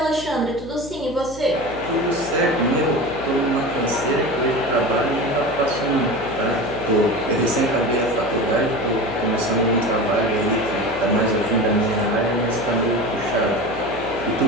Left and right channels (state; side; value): noise; left; hum, 16 dB below the sound